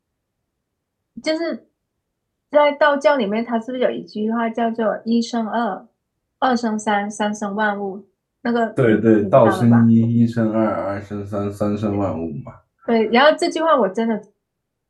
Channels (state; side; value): identical; both; correlation 1.00